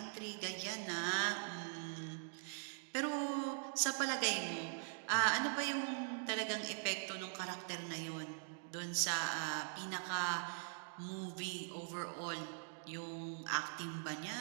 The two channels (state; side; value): silent; left; digital silence